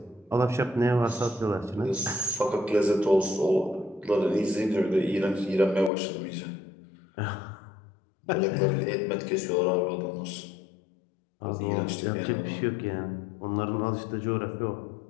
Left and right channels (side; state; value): right; drops out; at 5.9 s